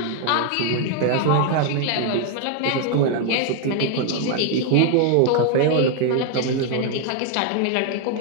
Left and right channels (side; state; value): both; different; correlation 0.00